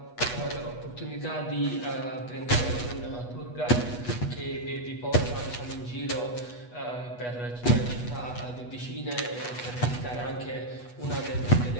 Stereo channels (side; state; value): right; late; 8.2 ms